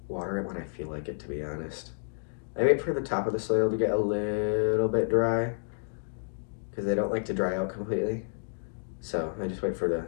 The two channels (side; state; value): right; silent; digital silence